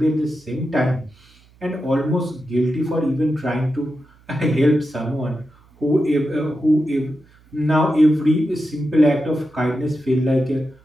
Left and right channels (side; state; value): right; noise; hum, 29 dB below the sound